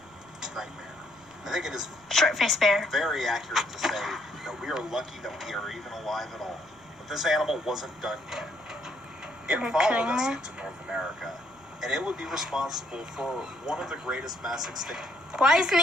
nightmare. I think it is Short-faced bear. very accurate to say that we are lucky that we are even alive at all. But this animal wasn't done yet. It Are you followed kidding us me? into North America, and it would be responsible for one of the greatest mass extinctions Why isn't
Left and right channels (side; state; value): right; noise; rumble, 29 dB below the sound